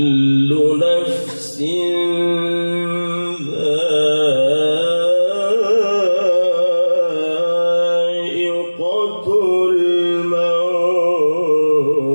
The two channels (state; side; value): inverted; both; correlation -1.00